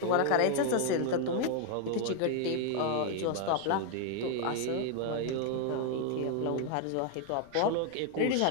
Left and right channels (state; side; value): different; both; correlation 0.00